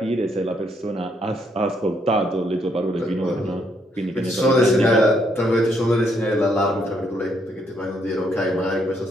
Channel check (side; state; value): both; normal; correlation 0.72